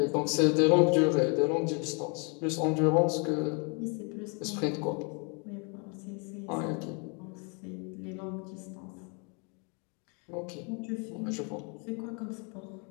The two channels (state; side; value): quieter; right; 35.1 dB